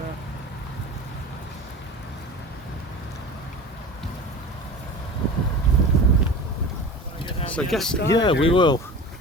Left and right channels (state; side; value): normal; both; correlation 0.35